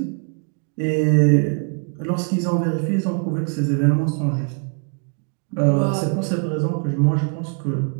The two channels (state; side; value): quieter; left; 38.6 dB